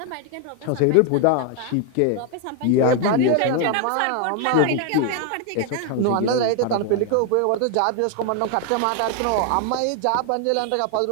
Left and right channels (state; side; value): different; both; correlation 0.01